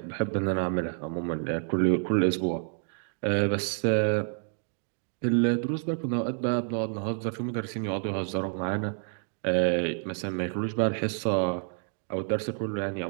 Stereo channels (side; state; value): left; silent; 59 dB below the other